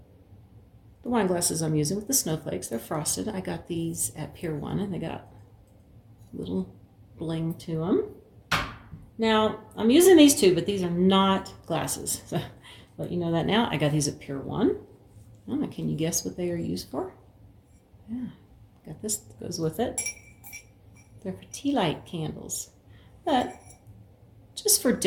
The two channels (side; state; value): both; identical; correlation 1.00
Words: the wine glasses I'm using with the snowflakes. They're frosted. I got these at Pier 1 and they got little bling to them. Now, I'm using these too, but these are not glasses. So let you know that now. I got these at Pier 1. I don't know, can you guess what they are used for? Yeah, got this that goes with it. They're for tea light candles, but just for